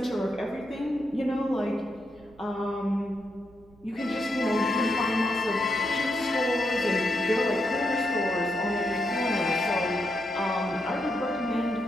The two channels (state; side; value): noise; right; rumble, 27 dB below the sound